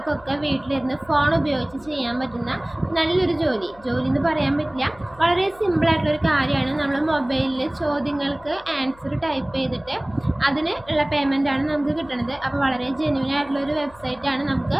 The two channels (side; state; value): left; noise; hum, 24 dB below the sound